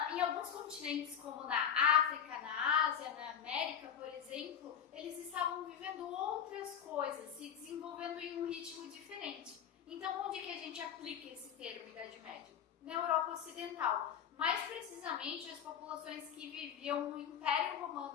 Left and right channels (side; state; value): right; quieter; 8.4 dB